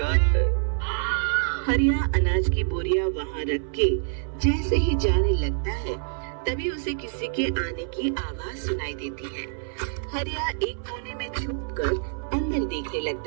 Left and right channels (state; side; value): silent; left; 58 dB below the other